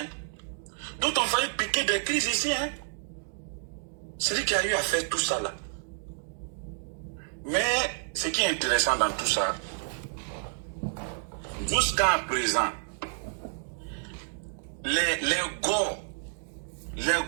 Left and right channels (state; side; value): silent; left; digital silence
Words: D'autres ont failli piquer des crises ici, hein. C'est lui qui a eu à faire tout ça là. Mais ce qui est intéressant dans tout ça, jusqu'à présent, les